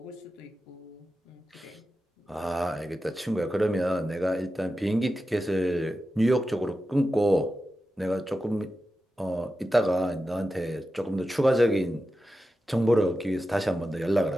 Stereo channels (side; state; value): both; normal; correlation 0.92